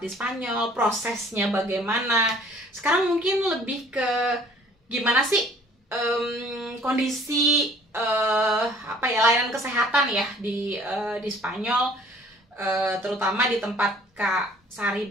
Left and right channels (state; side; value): normal; both; correlation 0.55